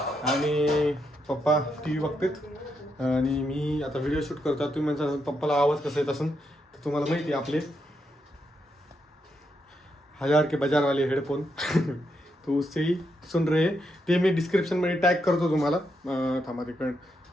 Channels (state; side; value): normal; both; correlation 0.81